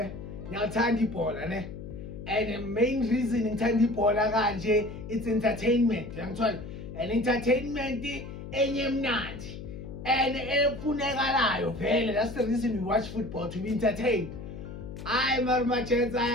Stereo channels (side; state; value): left; noise; hum, 10 dB below the sound